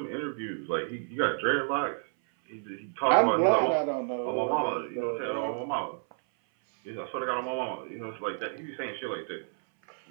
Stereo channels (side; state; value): left; silent; 58 dB below the other